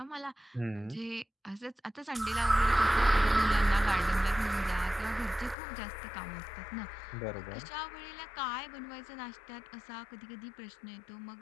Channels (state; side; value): drops out; right; at 5.6 s